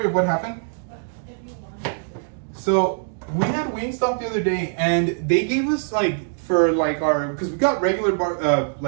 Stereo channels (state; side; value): silent; left; digital silence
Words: of what happened? If you want. So we had Wingstop the other day, and they gave us like for like our, because we got regular